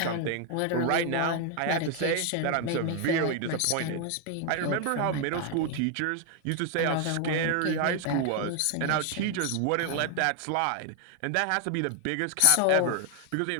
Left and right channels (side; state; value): both; different; correlation 0.00